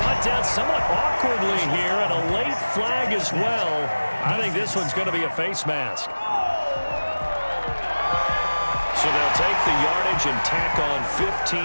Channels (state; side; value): inverted; both; correlation -1.00